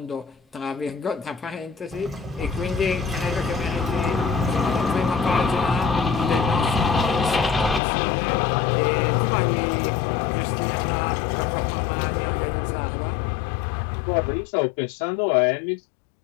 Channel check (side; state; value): right; drops out; at 7.8 s